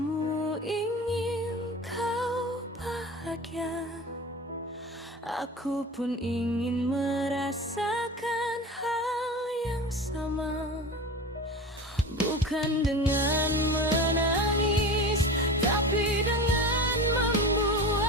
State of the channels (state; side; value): normal; both; correlation 0.31